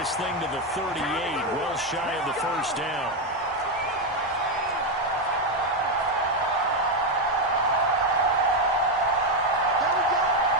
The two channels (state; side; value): normal; both; correlation 0.06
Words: thing to the 38, well shy of the first down.